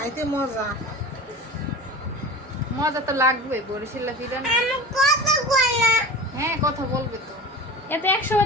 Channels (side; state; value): both; normal; correlation 0.33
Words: মজা। মজা তো লাগবে বরিশালের পিঠা না। হ্যাঁ কথা বলবে তো। এতে